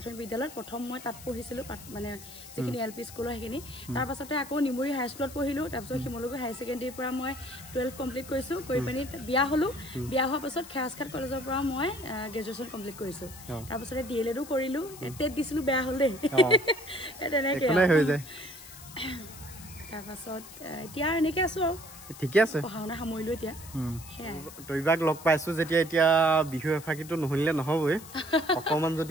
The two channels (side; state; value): left; noise; hiss, 16 dB below the sound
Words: বিদ্যালয়ত প্ৰথম মই তাত পঢ়িছিলোঁ, মানে যিখিনি LP স্কুলৰ সেইখিনি। তাৰপাছতে আকৌ নিমুৰি হাইস্কুলত পঢ়িলোঁ। তাৰপিছত শিমলুগুৰি হায়াৰ ছেকেণ্ডেৰীৰ পৰা মই 12 কমপ্লিট কৰিছোঁ। কৰি পিনি বিয়া হ'লোঁ। বিয়া হোৱাৰ পাছত খেৰাজঘাট কলেজৰ পৰা মই গ্ৰেজুৱেশ্যন কমপ্লিট কৰিছোঁ। তাৰপাছতে DLEDো কৰিলোঁ। টেট দিছিলোঁ, বেয়া হ'ল দেই। তেনেকৈ হৈ যায়। তাৰপাছত এতিয়া এনেকৈ আছোঁ আৰু ঠিকে আছে, পঢ়া শুনা সামৰিলোঁ এতিয়া। টবিবাক লগ পাইছোঁ যেতিয়া এতিয়া বিহু এফাকিটো নুশুনিলে নহ'বই। অকণমান